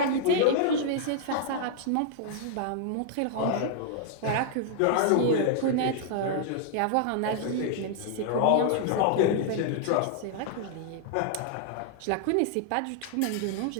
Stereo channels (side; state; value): both; different; correlation -0.01